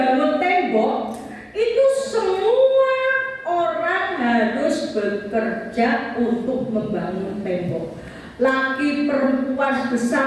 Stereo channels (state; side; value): identical; both; correlation 1.00